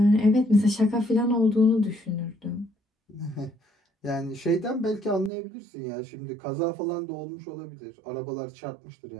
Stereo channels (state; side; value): drops out; left; at 5.3 s